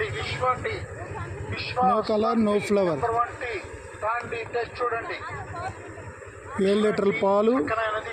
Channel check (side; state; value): both; identical; correlation 1.00